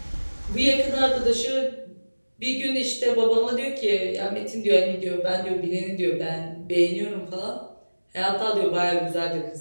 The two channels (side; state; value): both; inverted; correlation -1.00